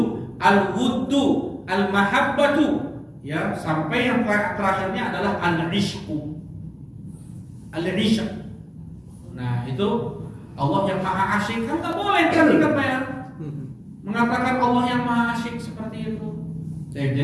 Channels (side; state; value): both; identical; correlation 1.00